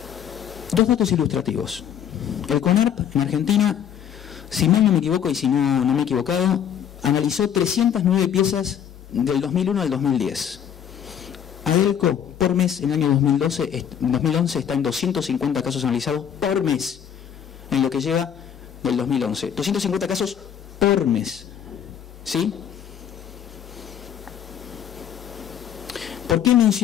Dos datos ilustrativos. El CONARP en Argentina, si mal no me equivoco y si no me he equivocado, analizó 309 piezas del 2001 al 2010. ADELCO por mes en el año 2011 está en 250 casos analizados por mes en lo que lleva del 2011. 250 casos por mes. ¿Sí? ¿Por qué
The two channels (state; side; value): quieter; right; 9.0 dB